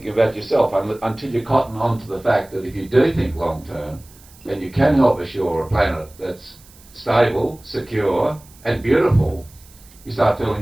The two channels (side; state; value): right; noise; hiss, 25 dB below the sound